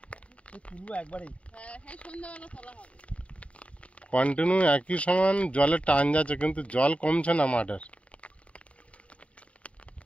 হ্যাঁ, সন্ধ্যাবেলা তোলা হবে। কন্টিনিউ একই সমান জলের টান যাচ্ছে, কিন্তু জল কমছে না মাঠের।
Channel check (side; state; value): right; late; 0.064 ms